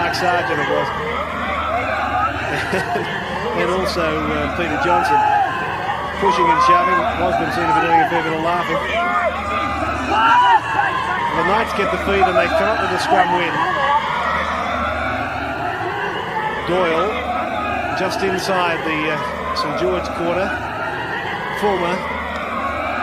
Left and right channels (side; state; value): both; identical; correlation 1.00